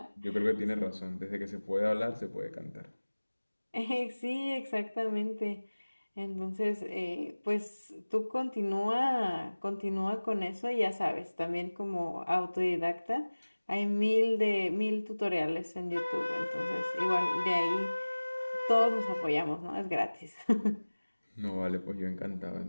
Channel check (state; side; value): inverted; both; correlation -1.00